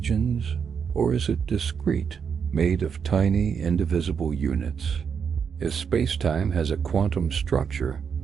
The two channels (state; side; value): quieter; left; 6.8 dB